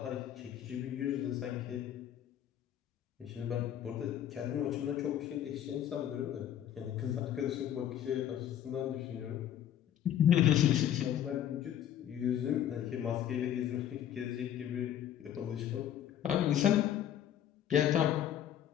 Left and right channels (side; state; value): right; quieter; 10.7 dB